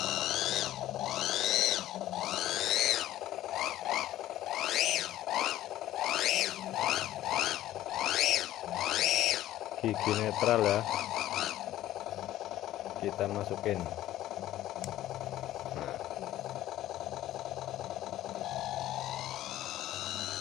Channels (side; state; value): right; quieter; 13.9 dB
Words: Gigi netral ya, kita masukin. Nah,